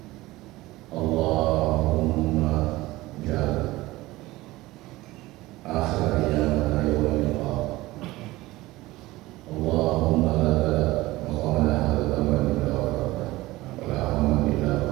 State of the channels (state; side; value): quieter; left; 18.8 dB